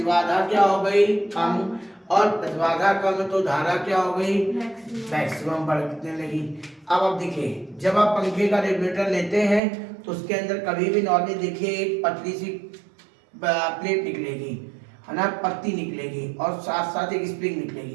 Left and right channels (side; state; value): left; drops out; at 9.6 s